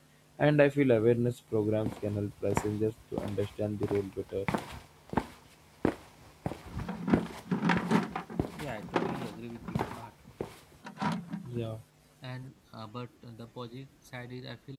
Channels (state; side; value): identical; both; correlation 1.00